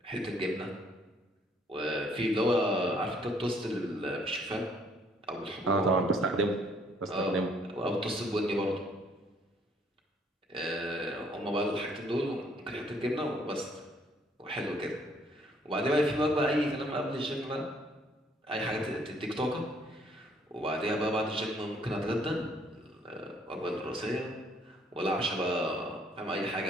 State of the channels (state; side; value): normal; both; correlation 0.64